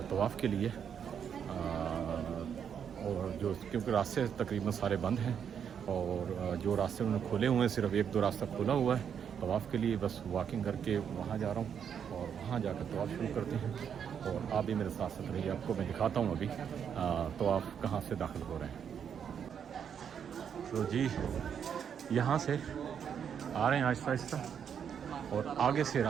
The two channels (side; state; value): left; quieter; 7.9 dB